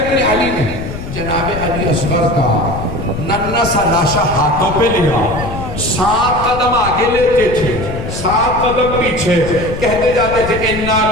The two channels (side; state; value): left; noise; rumble, 8 dB below the sound